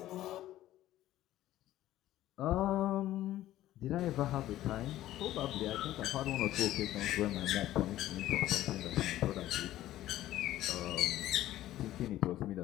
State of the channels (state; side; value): quieter; right; 14.2 dB